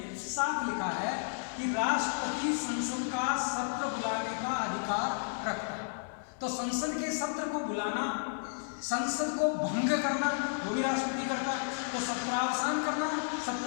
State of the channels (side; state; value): right; silent; digital silence